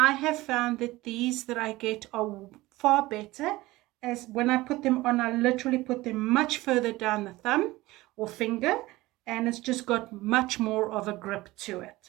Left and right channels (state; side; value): quieter; left; 19.0 dB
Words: have found that these that I get are far better, as when I put them on, I literally put them much further down the thumb or finger, and it's just got much more of a grip to it,